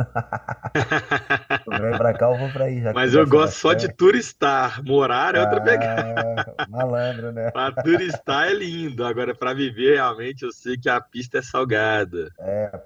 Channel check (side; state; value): both; identical; correlation 1.00